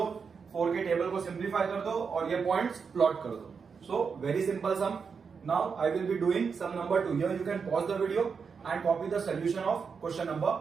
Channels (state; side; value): quieter; left; 5.8 dB